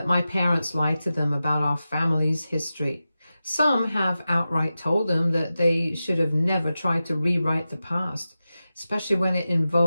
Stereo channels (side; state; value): both; inverted; correlation -0.93